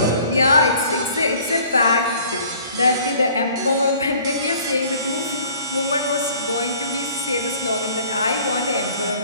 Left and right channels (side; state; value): both; inverted; correlation -0.52